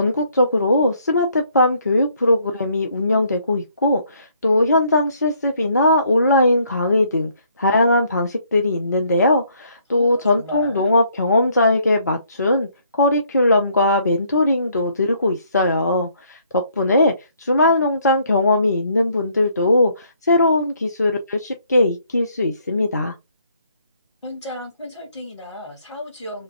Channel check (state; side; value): inverted; both; correlation -0.66